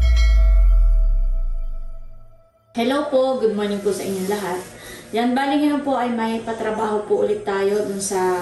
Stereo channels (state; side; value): identical; both; correlation 1.00